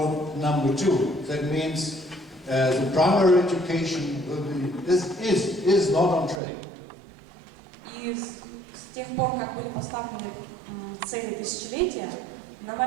number 2. That means the primary education is not on track. И с тех пор, как были поставлены цели тысячелетия, на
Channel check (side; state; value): left; drops out; at 6.4 s